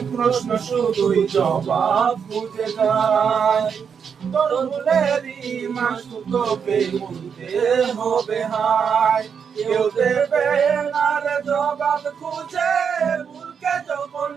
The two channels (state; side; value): quieter; left; 6.8 dB